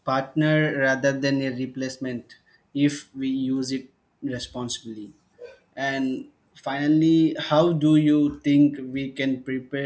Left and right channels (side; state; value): both; identical; correlation 1.00